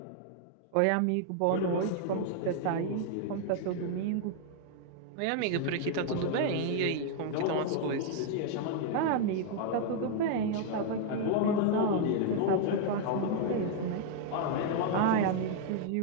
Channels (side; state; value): both; different; correlation 0.00